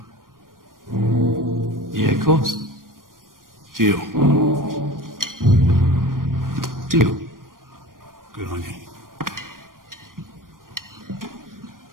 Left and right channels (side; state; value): left; late; 0.91 ms